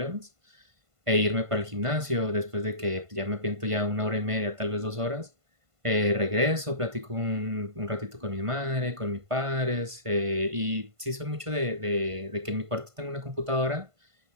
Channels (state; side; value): late; left; 1.5 ms